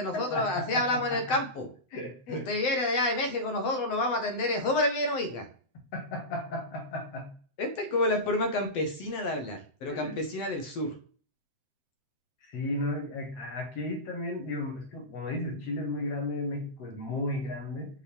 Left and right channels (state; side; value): late; right; 7.8 ms